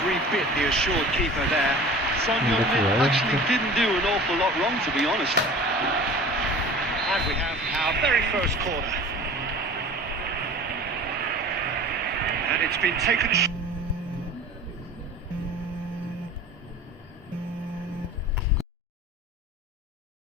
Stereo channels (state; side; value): normal; both; correlation 0.41